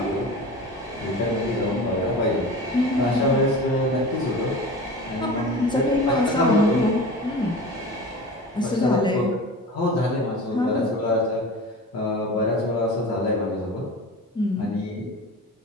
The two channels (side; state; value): both; normal; correlation 0.34